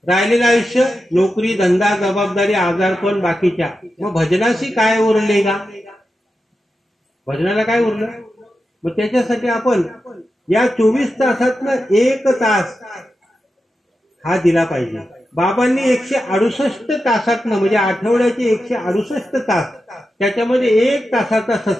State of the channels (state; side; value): normal; both; correlation 0.90